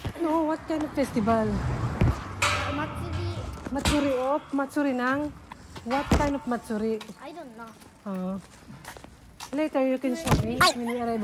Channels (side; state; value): both; identical; correlation 1.00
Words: No, what kind of festival? Matsuri of Matsuri ng What kind of matsuri? I don't know. Later you can show me. Mini